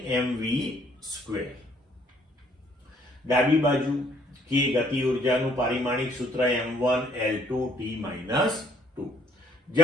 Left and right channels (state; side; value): normal; both; correlation 0.64